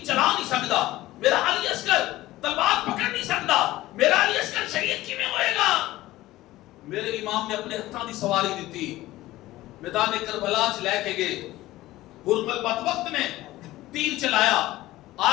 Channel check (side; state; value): right; quieter; 16.8 dB